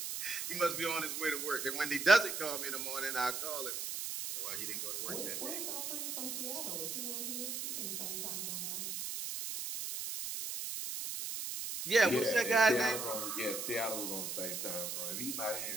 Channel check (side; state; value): right; noise; hiss, 4 dB below the sound